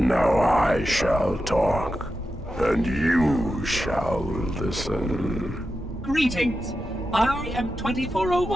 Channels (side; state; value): both; normal; correlation 0.90